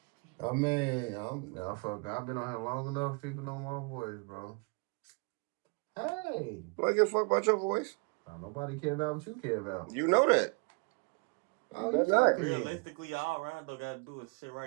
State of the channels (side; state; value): left; quieter; 32.7 dB